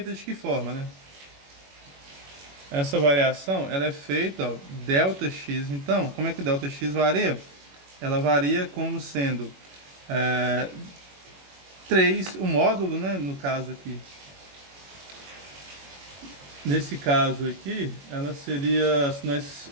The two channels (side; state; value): left; late; 21 ms